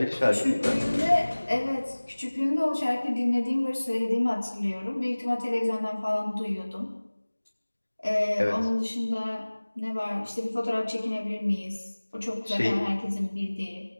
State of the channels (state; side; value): inverted; both; correlation -1.00